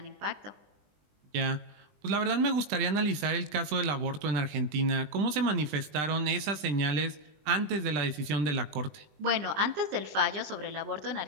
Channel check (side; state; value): left; late; 20 ms